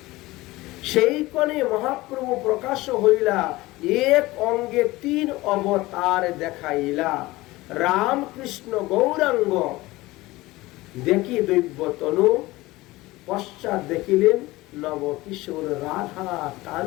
সেই কোণে মহাপ্রভু প্রকাশ হইলা, এক অঙ্গে 3 অবতার দেখাইলা। রাম কৃষ্ণ গৌরাঙ্গ দেখি দৈব্য তনু, পশ্চাৎ দেখিলেন নব কিশোর রাধা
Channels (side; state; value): right; quieter; 19.5 dB